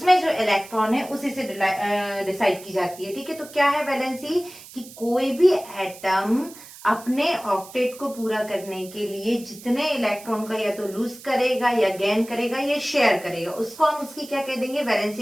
जो इलेक्ट्रॉन है उसी से डिसाइड की जाती है। ठीक है, तो क्या है वैलेंसी, कि कोई भी एटम अपने ऑक्टेट को पूरा करने के लिए जितने इलेक्ट्रॉन का या तो लूज करेगा या गेन करेगा या शेयर करेगा, उसको हम उसकी क्या कह देंगे,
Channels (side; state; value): right; noise; hiss, 18 dB below the sound